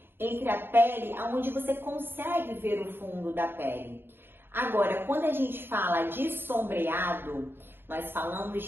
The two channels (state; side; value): late; left; 0.10 ms